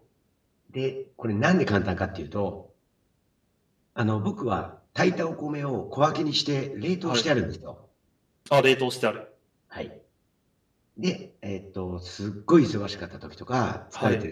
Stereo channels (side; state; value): both; identical; correlation 1.00